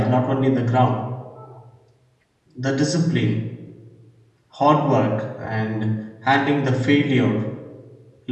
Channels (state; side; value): identical; both; correlation 1.00